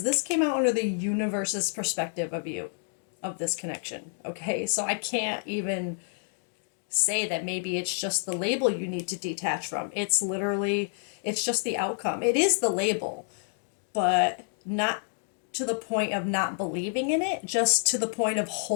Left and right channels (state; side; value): silent; right; 59 dB below the other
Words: this came out under the universe's perspective of you, of this connection. Okay, so I can't even say that maybe it's just the label you need to detach from. It's just the outcome. It is the label, but not to the point of not believing in it, just to the point of